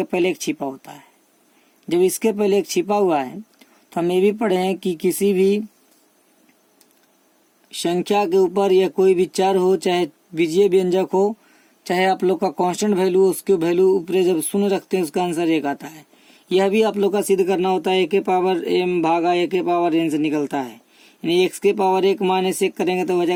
पहले एक छिपा होता है। जब इसके पहले एक छिपा हुआ है तो हम ये भी पढ़े हैं कि किसी भी संख्या के ऊपर या कोई भी चर हो, चाहे बीजीय व्यंजक हो, चाहे आप लोग का कांस्टेंट वैल्यू, उसके वैल्यू ऊपर जब शून्य रखते हैं उसका आंसर एक आता है। यह भी आप लोग का सिद्ध करना होता है। ए के पावर एम भागा ए के पावर एन से निकलता है, यानी एक्स के पावर 1 माइनस 1 करेंगे तो हो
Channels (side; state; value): both; identical; correlation 1.00